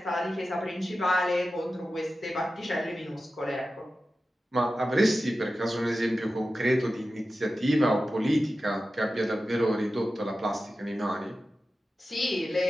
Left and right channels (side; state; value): both; normal; correlation 0.93